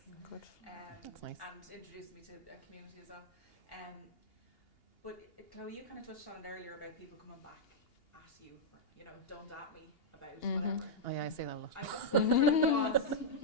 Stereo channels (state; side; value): late; right; 2.8 ms